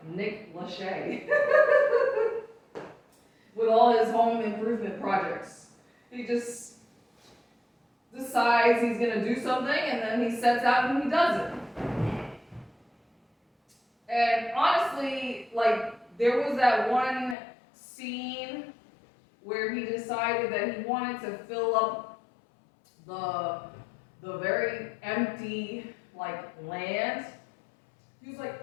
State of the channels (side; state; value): right; drops out; at 17.4 s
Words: Nick Lachey with all his home improvement projects. He just decides he's gonna do something and then he sets out and he does it. And honestly, there was that one scene where he decided that he wanted to fill up the very empty land. He was